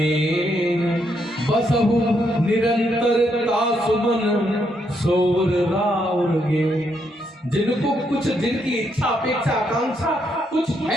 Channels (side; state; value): both; normal; correlation 0.77